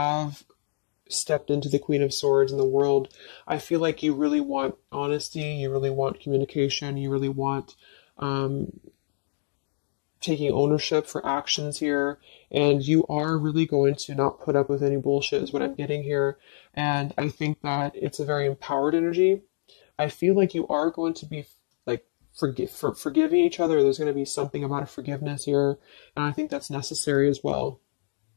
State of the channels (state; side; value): silent; right; digital silence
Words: stepped into the Queen of Swords in the world. I feel like you really want honesty, you really want communication, you really want taking ownership for actions here, and you are really going to not put up with any bullshit is what I'm getting here. And I think that it's a very empowered energy. I feel like you are going to be like forgiving each other. There's going to be something about a forgiveness here, and I think that's necessary as well.